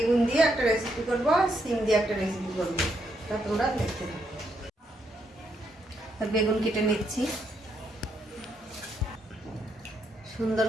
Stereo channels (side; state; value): both; normal; correlation 0.77